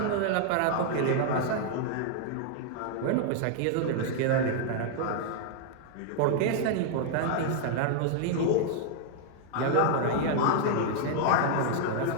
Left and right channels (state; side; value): different; both; correlation -0.01